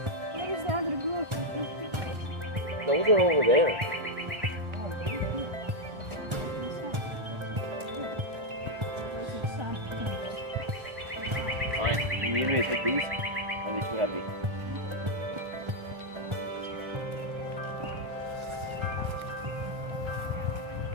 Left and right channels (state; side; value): late; left; 1.3 ms